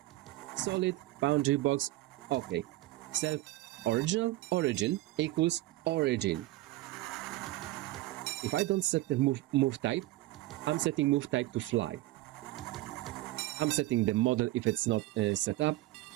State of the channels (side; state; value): left; quieter; 17.5 dB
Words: Solid, boundary box, okay. Self original origin equals origin. If I don't set the move type, I'm setting move type to fly. I'm setting the model if it's not set up,